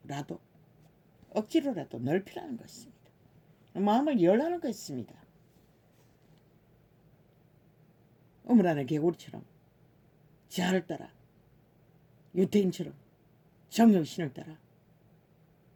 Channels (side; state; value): both; identical; correlation 1.00